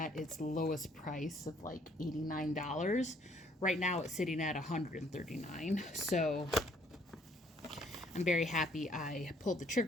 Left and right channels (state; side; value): normal; both; correlation 0.64